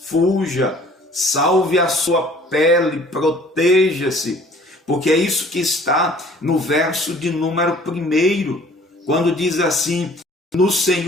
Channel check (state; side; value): normal; both; correlation 0.53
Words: fuja, salve a sua pele, proteja-se, porque é isso que está no verso de número 1, quando diz assim: no